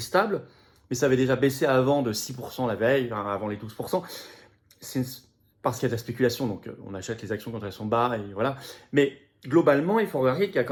mais ça avait déjà baissé avant de 6% la veille, avant les 12%. C'est parce qu'il y a de la spéculation, donc on achète les actions quand elles sont bas, et voilà. Mais globalement, il faut regarder qu'il y a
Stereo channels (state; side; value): identical; both; correlation 1.00